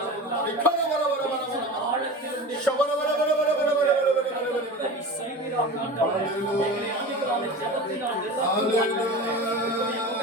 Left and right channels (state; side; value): normal; both; correlation 0.32